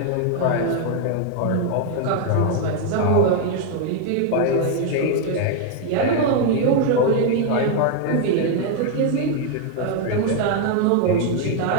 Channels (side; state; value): both; different; correlation 0.01